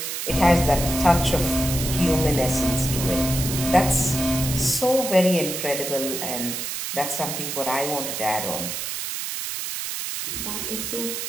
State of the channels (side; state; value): right; noise; hiss, 4 dB below the sound